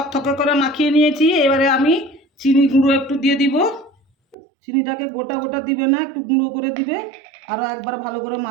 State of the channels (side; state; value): left; drops out; at 4.4 s